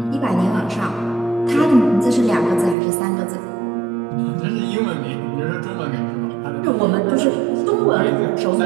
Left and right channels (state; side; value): drops out; left; at 2.8 s